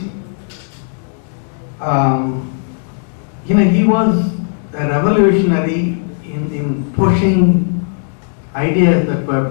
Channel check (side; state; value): right; silent; digital silence